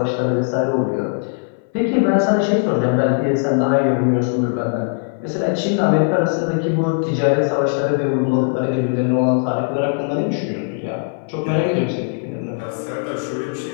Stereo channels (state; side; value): silent; right; 59 dB below the other